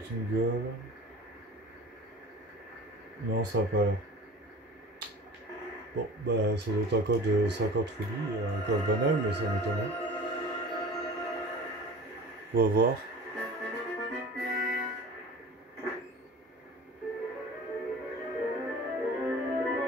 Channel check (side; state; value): both; normal; correlation 0.40